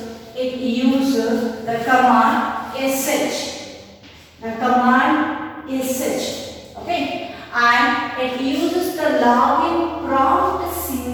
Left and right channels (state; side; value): identical; both; correlation 1.00